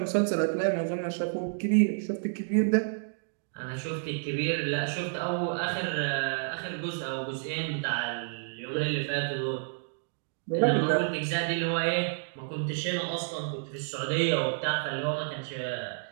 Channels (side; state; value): left; silent; digital silence